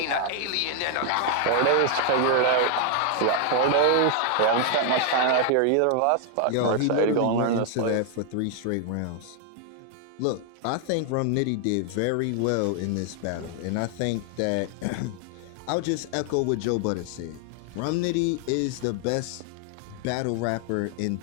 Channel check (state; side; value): different; both; correlation 0.00